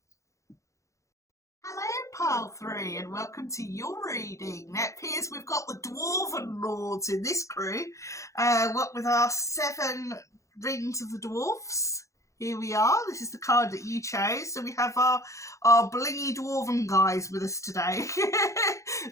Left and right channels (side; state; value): right; late; 0.15 ms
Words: Hello, Pile 3, and welcome to your reading. Now, it appears we've got the Dwarven Lords in this crew. What with our 7 Rings of the Dwarfs. Here we are. This is the card that you chose. So we have our blingy Dwarven guys with us today.